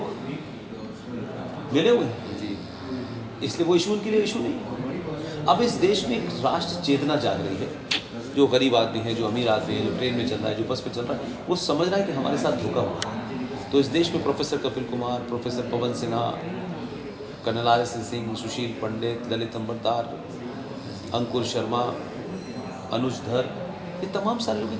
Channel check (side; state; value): both; identical; correlation 1.00